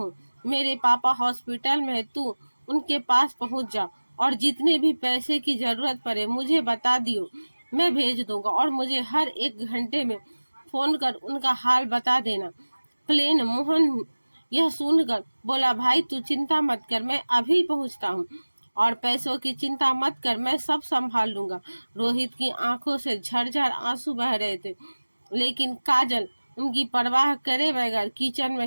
मेरे पापा हॉस्पिटल में है, तू उनके पास पहुँच जा और जितने भी पैसे की जरूरत पड़े मुझे बता दियो, मैं भेज दूंगा। और मुझे हर 1 घंटे में फोन कर उनका हाल बता देना। प्लेन मोहन यह सुनकर बोला, भाई तू चिंता मत कर, मैं अभी पहुंचता हूँ और पैसों की चिंता मत कर, मैं सब संभाल लूंगा। रोहित की आंखों से झरझर आंसू बह रहे थे, लेकिन काजल उनकी परवाह करे बगैर किचन में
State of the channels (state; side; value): inverted; both; correlation -1.00